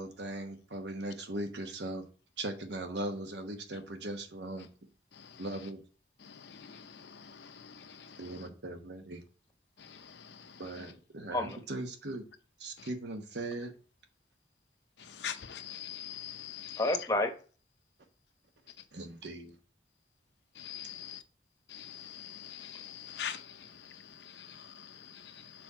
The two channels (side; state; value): both; normal; correlation 0.30